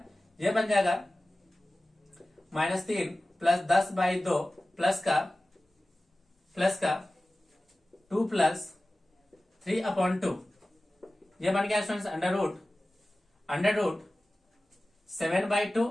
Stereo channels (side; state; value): both; normal; correlation 0.96